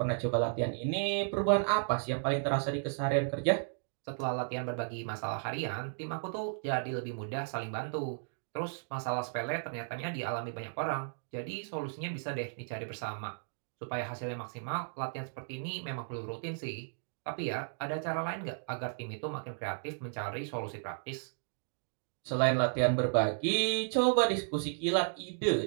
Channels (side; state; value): left; silent; digital silence